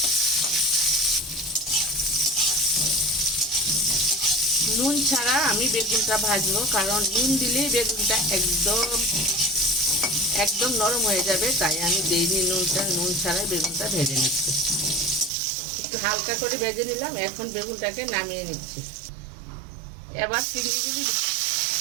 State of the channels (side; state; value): left; drops out; at 15.3 s